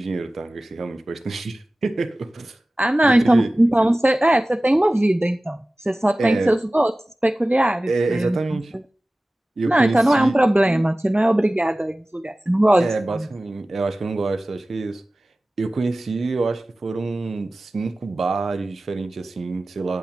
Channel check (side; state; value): both; normal; correlation 0.97